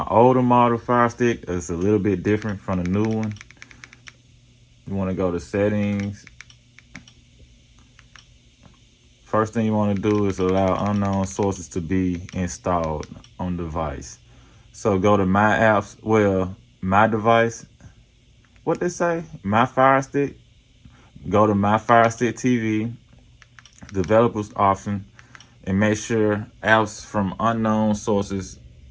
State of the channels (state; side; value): identical; both; correlation 1.00